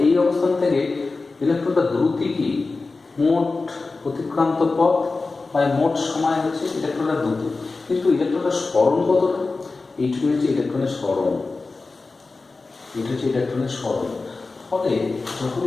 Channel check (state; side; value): quieter; right; 3.8 dB